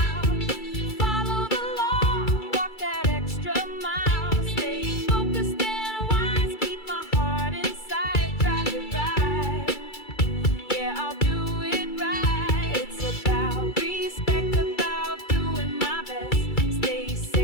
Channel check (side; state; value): right; late; 2.3 ms